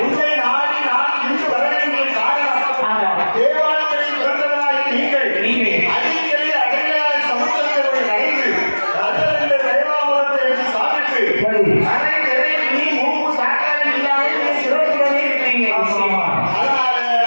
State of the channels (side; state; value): both; inverted; correlation -1.00